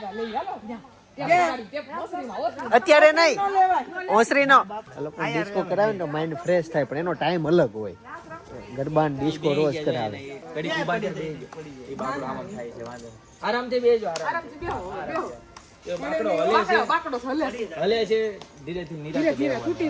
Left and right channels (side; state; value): both; identical; correlation 1.00